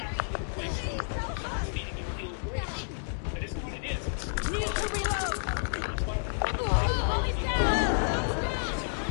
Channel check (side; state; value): right; silent; digital silence